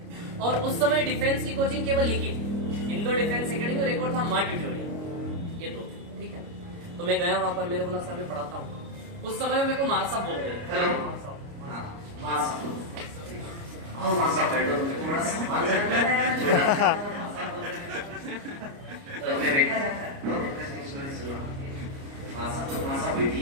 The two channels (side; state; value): left; late; 29 ms